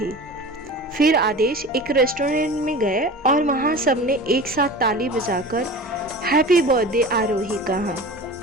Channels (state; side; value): normal; both; correlation 0.35